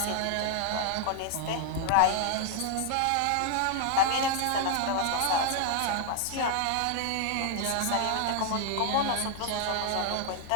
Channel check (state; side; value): different; both; correlation 0.00